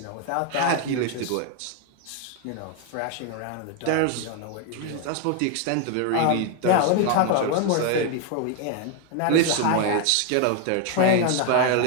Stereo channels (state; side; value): different; both; correlation 0.01